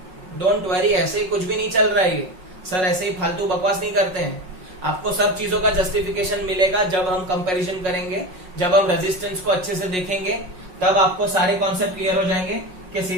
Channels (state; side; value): late; left; 5.4 ms